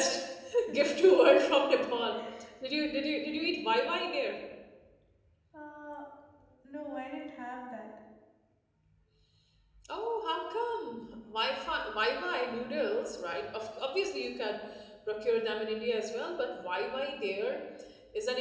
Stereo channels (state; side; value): identical; both; correlation 1.00